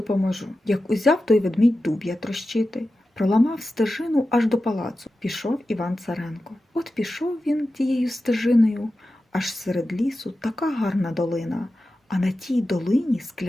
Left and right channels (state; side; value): normal; both; correlation 0.93